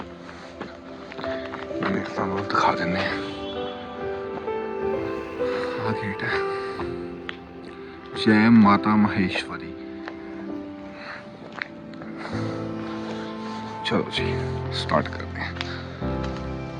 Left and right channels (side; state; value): both; identical; correlation 1.00